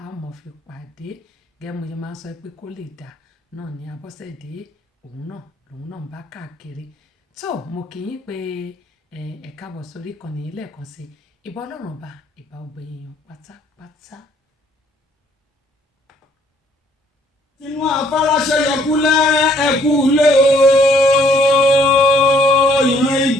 a mọ̀ fi pàdé. Gẹ́gẹ́ mo ṣe máa ń sọ pé kó lè dà náà ni Abọ́sẹ̀dé òun náà ń bá káàkiri. Tó mo kì í pé ẹ káàbọ̀ sórí ìkànnì lẹ́ẹ̀kan sí ìbà Ọlọ́run ọba ìbà ọgbẹ̀yìn pátápátá. Inú afárá ṣẹyọkúlẹ̀ ẹkú lé o. Ìran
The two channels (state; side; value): normal; both; correlation 0.63